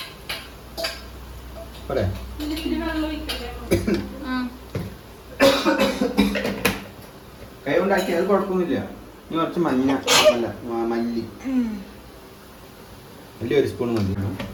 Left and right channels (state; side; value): identical; both; correlation 1.00